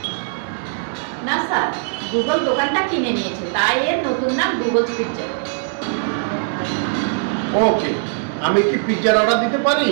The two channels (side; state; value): left; silent; digital silence